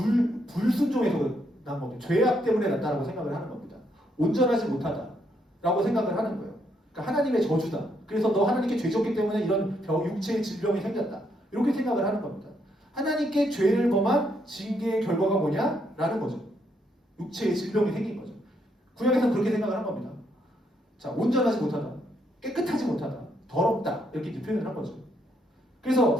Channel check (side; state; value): both; normal; correlation 0.75